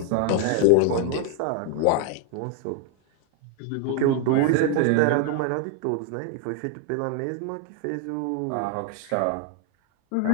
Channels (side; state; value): both; different; correlation 0.00